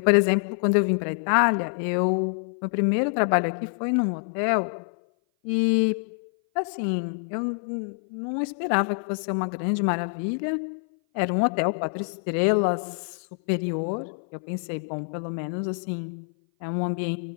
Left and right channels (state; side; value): silent; right; 57 dB below the other